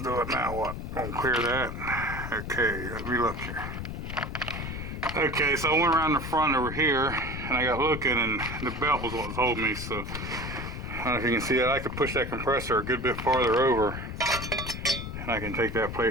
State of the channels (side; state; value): left; noise; rumble, 6 dB below the sound